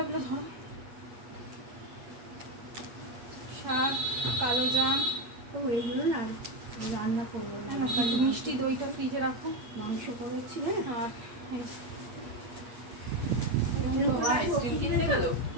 ধরো, শাক, কালো জাম। তো এইগুলো না রান্না করবো, একটু মিষ্টি দইটা ফ্রিজে রাখো, মাংস করেছি। আর এই যে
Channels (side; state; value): left; late; 8.4 ms